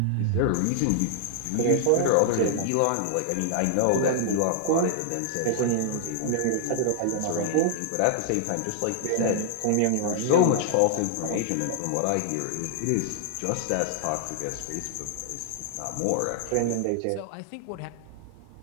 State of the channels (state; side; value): different; both; correlation -0.01